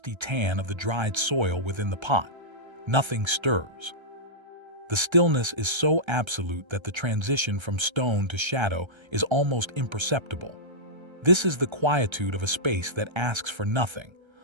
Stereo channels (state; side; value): late; left; 1.3 ms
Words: tan of the dried soil within the pot. Nothing stirs. The stillness is so absolute that the transition from stone to shadow is almost imperceptible. This is the quietude of a space that asks for nothing,